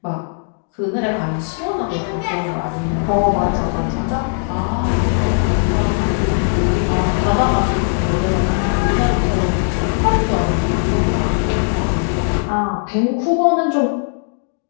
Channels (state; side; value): silent; right; 67 dB below the other